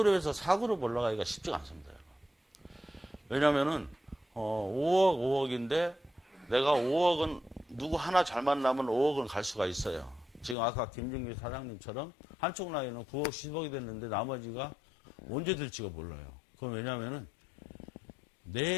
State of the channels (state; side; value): drops out; right; at 10.6 s